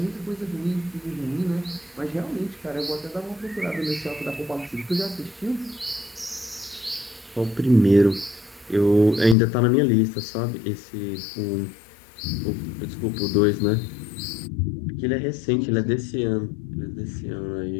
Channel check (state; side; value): drops out; right; at 9.3 s